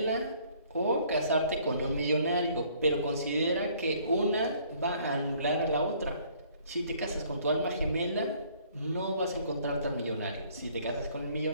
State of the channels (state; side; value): inverted; both; correlation -0.60